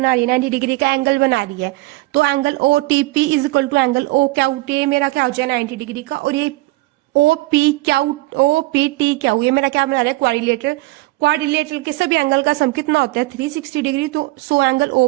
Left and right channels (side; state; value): left; quieter; 20.8 dB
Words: रही है, 90 डिग्री का एंगल बना रही है। तो angle O T P is equal to angle O Q T, मेरा क्या हो जाए 90 डिग्री का। और ये ओ पी टी क्यू, ये मेरा क्या बना रहा है, क्वाड्रिलेटरल। क्वाड्रिलेटरल के सभी एंगल का सम कितना होता है, 360 डिग्री। तो so angle O